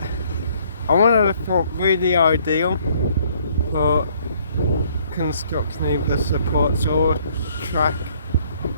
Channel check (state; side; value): inverted; both; correlation -0.63